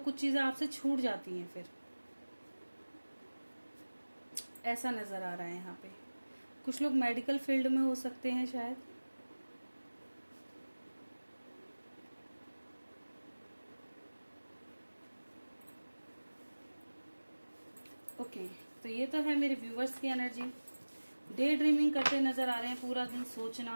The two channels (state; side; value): inverted; both; correlation -1.00